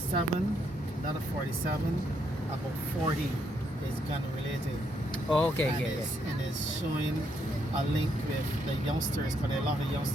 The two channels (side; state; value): both; normal; correlation 0.75